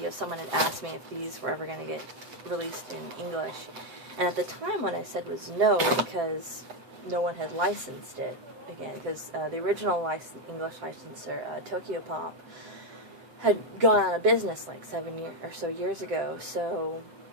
someone had asked me if these were ever going to get released in English, and at the time what I said was no, because no one had licensed it again, because the original English licensor, Tokyo Pop, had gone out of business like 7 or so years ago, so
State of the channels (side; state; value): left; late; 7.7 ms